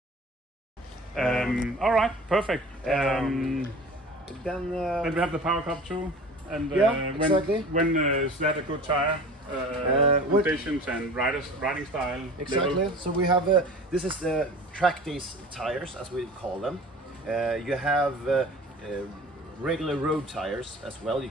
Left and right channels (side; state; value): both; normal; correlation 0.41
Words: All right, perfect. Then we have the power cup too, and exactly. when is that a good tire? Conditions and riding style. Exactly. Level. So we have this is the Trackdays tires, as we call them. You have regular road tires as well you